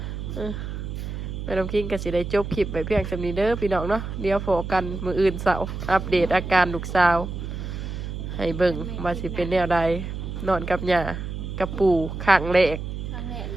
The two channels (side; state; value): right; noise; hum, 6 dB below the sound